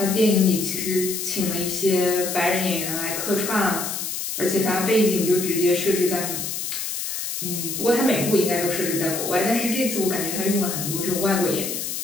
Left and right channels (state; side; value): noise; left; hiss, 4 dB below the sound